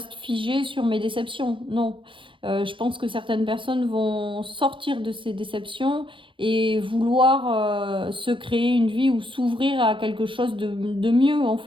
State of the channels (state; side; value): late; left; 0.25 ms